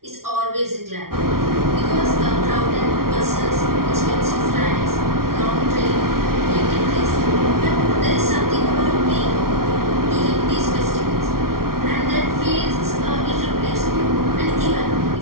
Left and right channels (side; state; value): left; late; 0.93 ms